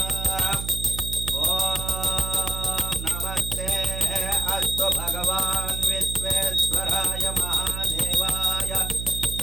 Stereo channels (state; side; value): noise; right; hum, 6 dB below the sound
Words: ఓం నమస్తే అస్తు భగవాన్ విశ్వేశ్వరాయ మహాదేవాయ